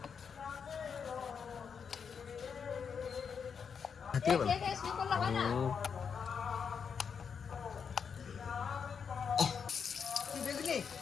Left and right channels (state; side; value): quieter; right; 6.5 dB